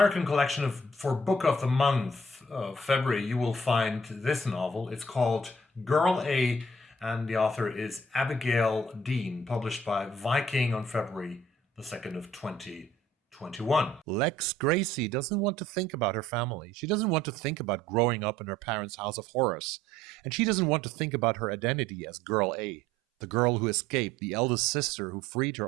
collection for Book of the Month of February, you will find this novel. It's called Girl A, and the author is Abigail Dean, published by Viking on February the 2nd of 2021. Lex Gracie doesn't want to think about her family. She doesn't want to think about growing up in her parents' house of horrors. And she doesn't want to think about her identity as Girl A, the girl who escaped, the eldest sister who freed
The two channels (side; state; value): both; normal; correlation 0.58